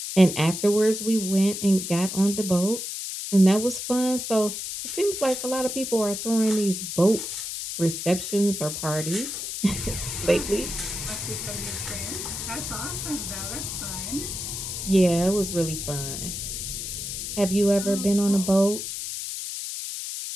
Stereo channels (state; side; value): noise; left; hiss, 5 dB below the sound